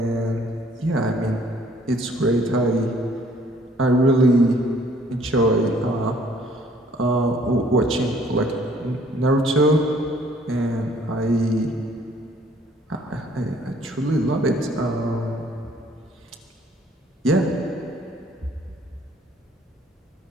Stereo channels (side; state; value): both; normal; correlation 0.60